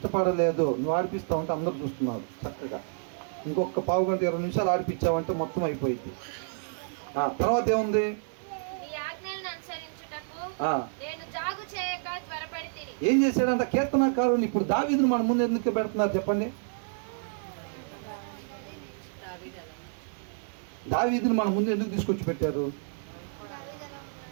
నువ్వు ఆడిపిస్తా ఉంటే అందరూ చూస్తున్నారు చక్కగా. ఇంకొక 15 గంట 20 నిమిషాలు ఆడిపించావంటే మొత్తం అయిపోయింది. తర్వాత ఏముంది? ఏం చేశాడంట కీర్తనకారుని? ఇప్పుడు దావీదును మన ముందు ఎందుకు పెడుతున్నారు చెప్పండి? దావీదును మన ముందు ఎందుకు తీసుకొచ్చి పెట్టారు?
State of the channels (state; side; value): silent; left; digital silence